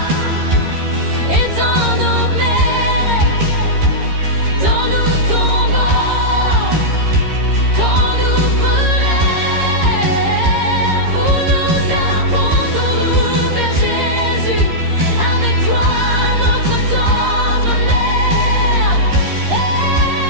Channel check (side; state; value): left; late; 13 ms